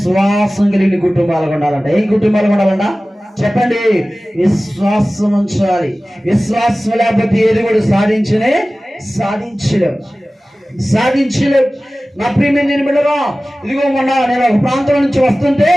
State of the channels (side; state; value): both; normal; correlation 0.97